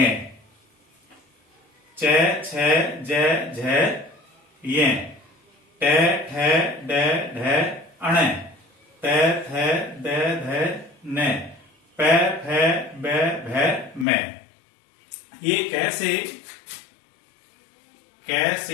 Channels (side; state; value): right; drops out; at 14.1 s